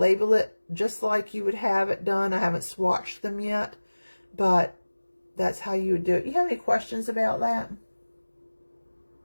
just like you would have it done. I haven't swatched them yet, but that's how you would do it. You have any questions about that?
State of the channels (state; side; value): inverted; both; correlation -1.00